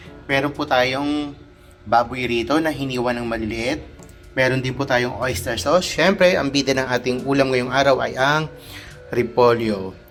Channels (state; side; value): identical; both; correlation 1.00